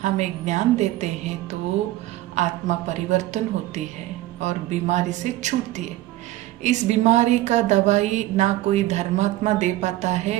हमें ज्ञान देते हैं तो आत्मा परिवर्तन होती है और बीमारी से छूटती है। इस बीमारी का दवाई ना कोई धर्मात्मा दे पाता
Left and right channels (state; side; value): quieter; left; 16.0 dB